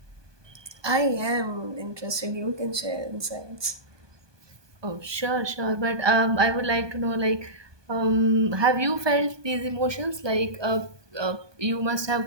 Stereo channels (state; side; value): late; left; 1.2 ms